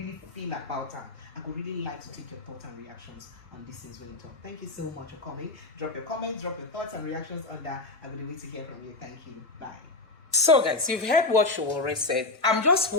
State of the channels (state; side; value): quieter; right; 3.2 dB